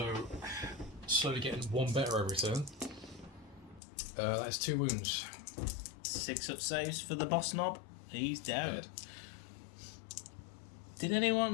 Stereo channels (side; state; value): right; drops out; at 3.8 s